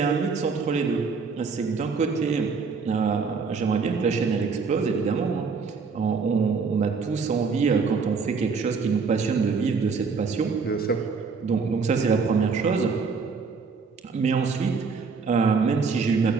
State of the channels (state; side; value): quieter; left; 5.1 dB